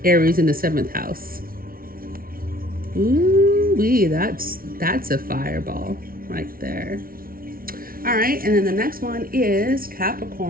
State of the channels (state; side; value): late; left; 0.43 ms